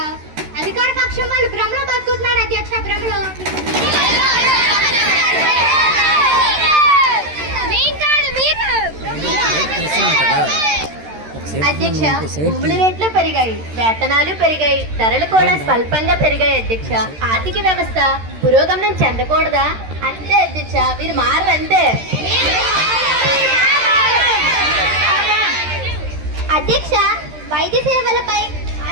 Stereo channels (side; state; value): left; late; 13 ms